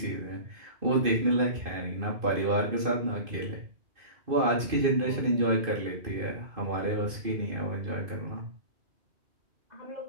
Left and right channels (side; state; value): left; late; 2.5 ms